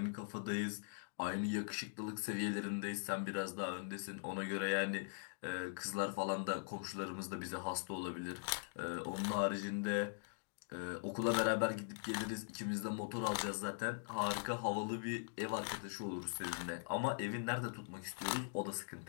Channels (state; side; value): silent; right; digital silence